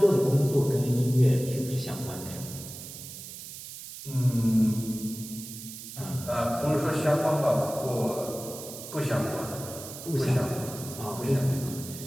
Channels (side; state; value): right; noise; hiss, 12 dB below the sound